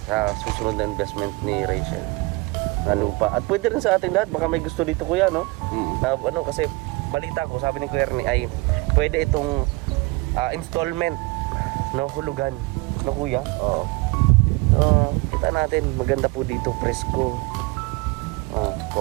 sa susunod na investment ni Rachel na lupa. At pwede rin sa ating lahat, baka may gusto dito kuya, no? Na, ano, kasi balita ko, sabi ni Kuya Ernie ay pwede itong installment, no, hulugan, no kuya? Oo. So, kita natin, maganda po dito, presko.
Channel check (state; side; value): quieter; left; 24.4 dB